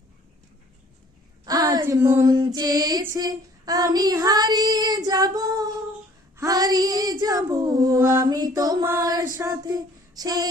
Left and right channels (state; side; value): normal; both; correlation 0.56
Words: আজ মন চেয়েছে আমি হারিয়ে যাব, হারিয়ে যাব আমি তোমার সাথে।